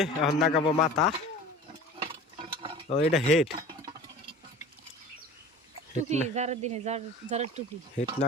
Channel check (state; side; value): normal; both; correlation 0.39